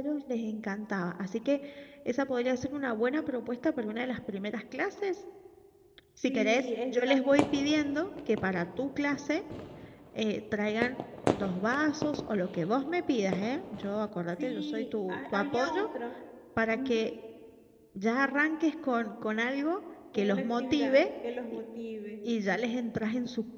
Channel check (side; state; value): both; identical; correlation 1.00